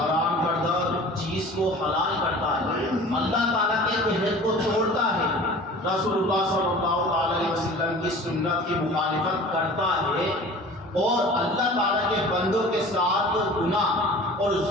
کردہ چیز کو حلال کرتا ہے، اللہ تعالیٰ کے عہد کو توڑتا ہے، رسول اللہ صلی اللہ علیہ وسلم کی سنت کی مخالفت کرتا ہے اور اللہ تعالیٰ کے بندوں کے ساتھ گناہ اور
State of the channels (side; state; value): both; normal; correlation 0.42